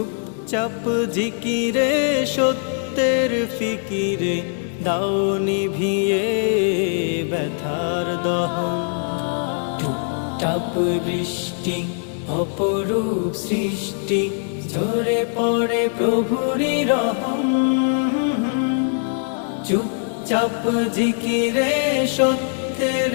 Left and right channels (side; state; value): right; silent; 61 dB below the other